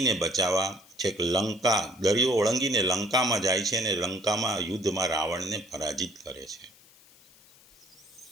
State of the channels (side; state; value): left; noise; hiss, 26 dB below the sound